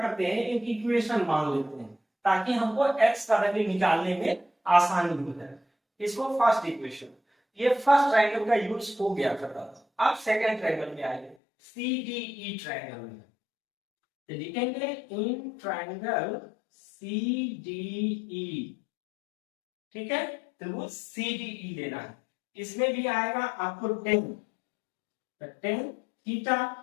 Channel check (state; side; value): drops out; right; at 11.4 s